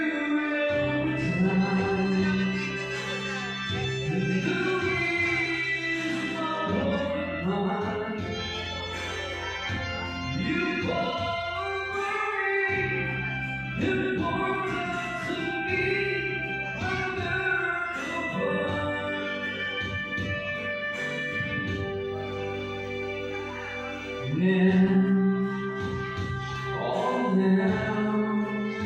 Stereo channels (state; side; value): identical; both; correlation 1.00